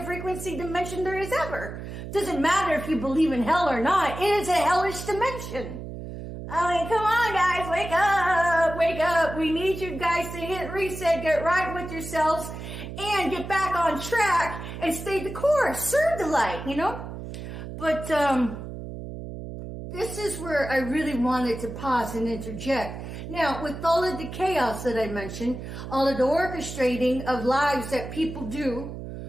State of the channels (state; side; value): noise; right; hum, 9 dB below the sound